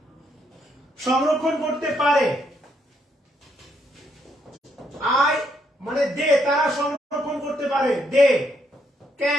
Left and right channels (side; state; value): both; normal; correlation 0.74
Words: সংরক্ষণ করতে পারে, আই মানে দে, তারা সংরক্ষণ করতে পারে, they